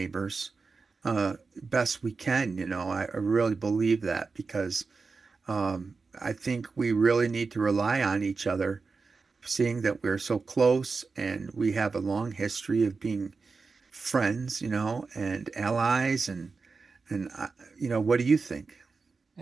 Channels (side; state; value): left; quieter; 4.5 dB